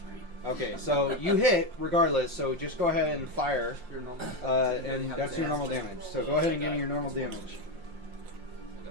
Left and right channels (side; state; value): left; late; 5.6 ms